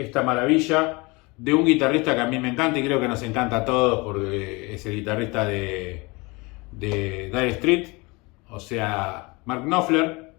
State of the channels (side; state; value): right; quieter; 25.9 dB